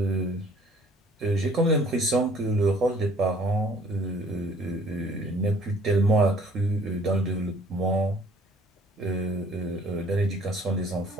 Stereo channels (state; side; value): normal; both; correlation 0.56